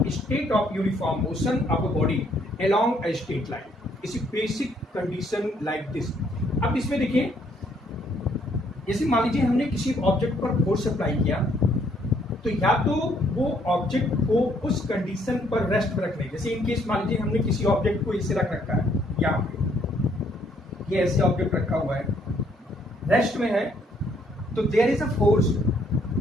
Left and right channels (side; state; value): both; normal; correlation 0.68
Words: state of uniform motion of a body along a straight line. इसी बेसिक कंडीशन लाइक दिस. अब इसमें देखिए, जैसे मान लीजिए हमने किसी ऑब्जेक्ट पर फोर्स अप्लाई किया तो या तो वो ऑब्जेक्ट को उस कंडीशन पर रेस्ट में रखने, जैसे इन केस मान लीजिए हमने किसी ऑब्जेक्ट को इसे रख रखा है, यहाँ पे ये ऐसे ऑब्जेक्ट रखा हुआ है, रेस्ट में है, तो देयर इज अ फोर्स.